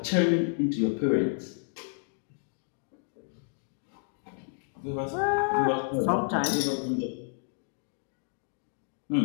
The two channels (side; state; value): right; silent; digital silence